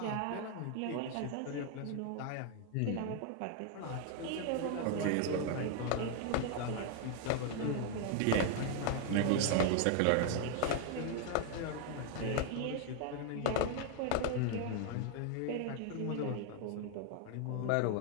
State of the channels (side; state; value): both; different; correlation 0.00